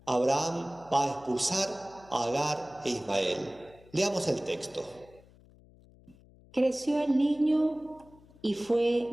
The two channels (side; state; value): left; noise; hum, 26 dB below the sound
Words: Abraham va a expulsar a Agar e Ismael. Leamos el texto. Creció el niño y fue